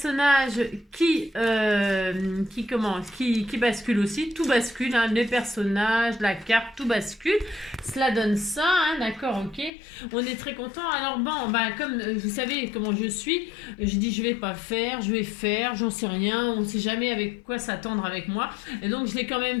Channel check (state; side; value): drops out; right; at 9.7 s